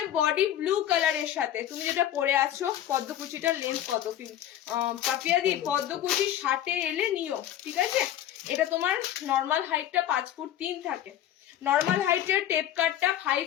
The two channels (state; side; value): quieter; right; 11.6 dB